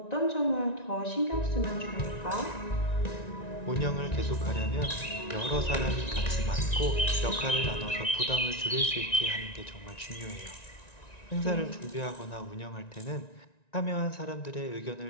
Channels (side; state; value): right; late; 1.9 ms